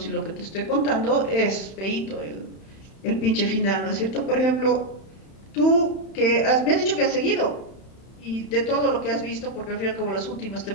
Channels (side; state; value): right; late; 31 ms